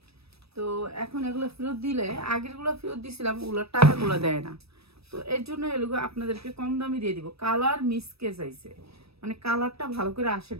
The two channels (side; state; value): left; late; 0.78 ms